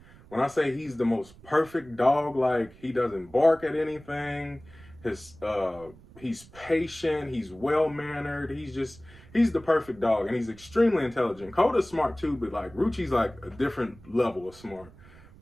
when I say he's the most perfect dog, like, he doesn't bark at anything. He's patient, he's well mannered, he's the perfect dog, and he's extremely intelligent. Coda's smart too, but like Ruchi's like a different level of smart.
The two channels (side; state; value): right; noise; rumble, 22 dB below the sound